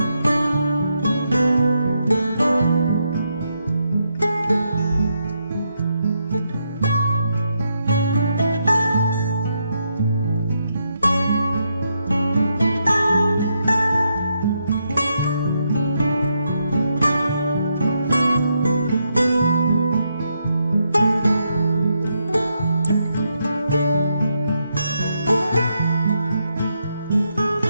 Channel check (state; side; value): inverted; both; correlation -0.81